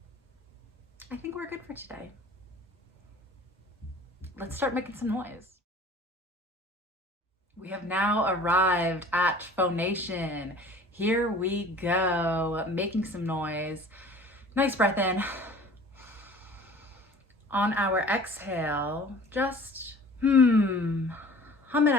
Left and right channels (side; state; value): both; normal; correlation 0.46